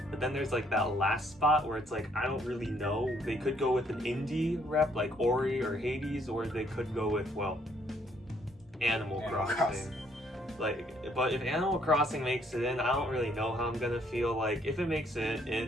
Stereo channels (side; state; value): both; normal; correlation 0.67